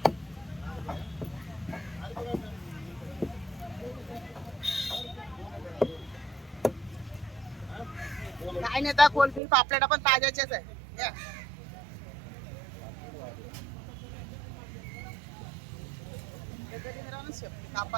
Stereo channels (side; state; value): left; drops out; at 9.4 s